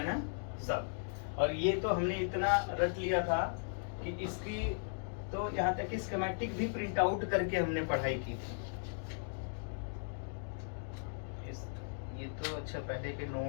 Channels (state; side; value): silent; right; digital silence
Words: ना सब। और ये तो हमने इतना रट लिया था कि इसकी तो यहाँ तक कि स्कीमेटिक भी प्रिंट आउट करके हमने पढ़ाई की थी। ये तो अच्छा पहले के